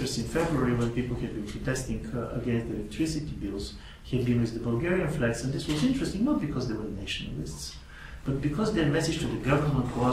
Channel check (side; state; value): both; identical; correlation 1.00